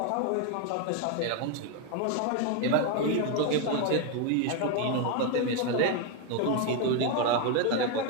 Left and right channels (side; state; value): both; different; correlation 0.01